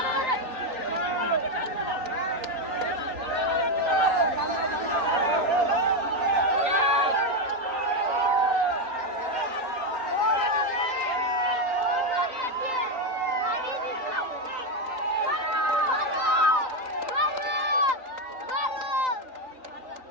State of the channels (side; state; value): left; late; 3.9 ms